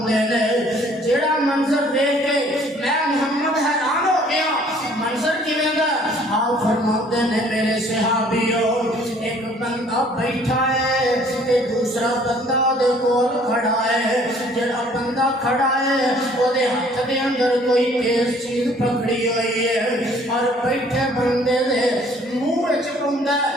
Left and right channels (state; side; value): normal; both; correlation 0.57